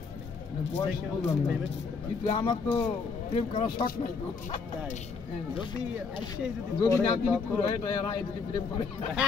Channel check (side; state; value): right; quieter; 4.9 dB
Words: কিন্তু আমার তো প্রেম করার শখ নাই। যদি না দিলে যদি প্রেম করে।